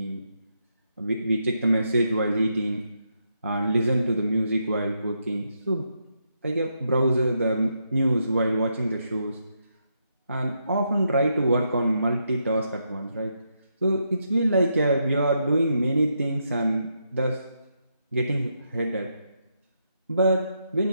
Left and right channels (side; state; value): both; inverted; correlation -0.80